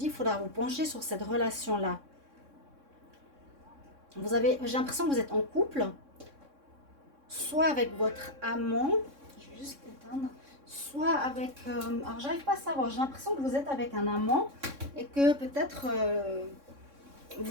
qu'il faudra vous pencher sur cette relation-là. J'ai l'impression que vous êtes en couple, soit avec votre amant, je vais juste éteindre, soit avec... alors, j'arrive pas à savoir, j'ai l'impression que vous êtes avec un amant et que peut-être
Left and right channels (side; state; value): left; late; 3.6 ms